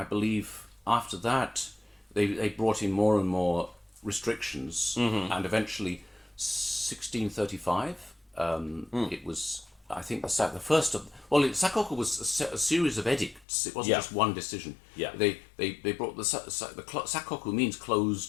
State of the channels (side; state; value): right; drops out; at 13.5 s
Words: believe after that they brought in more and more restrictions, and eventually 1635. It was. I think the first of sakoku was a series of edicts. It wasn't just one decision. Yeah, they brought the sakoku means